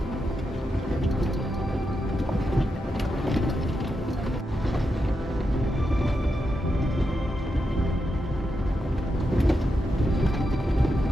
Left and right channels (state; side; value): normal; both; correlation 0.86